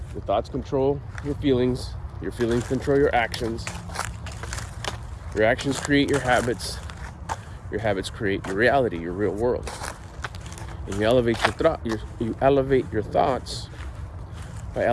Your thoughts control your feelings control your actions create your habits create your reality, your real world. And you elevate your thoughts by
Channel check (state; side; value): identical; both; correlation 1.00